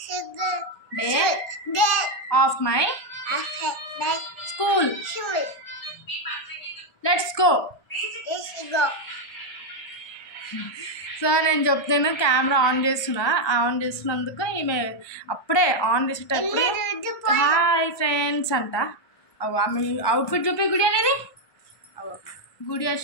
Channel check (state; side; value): late; right; 1.2 ms